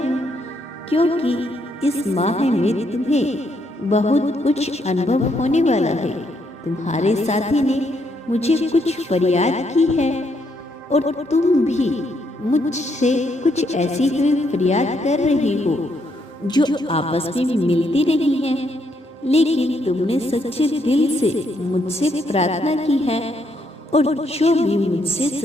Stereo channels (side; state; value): both; normal; correlation 0.75